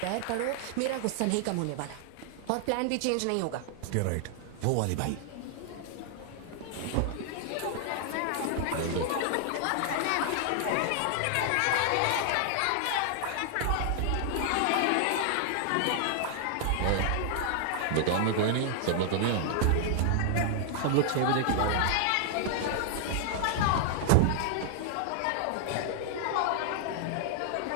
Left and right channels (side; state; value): both; different; correlation 0.00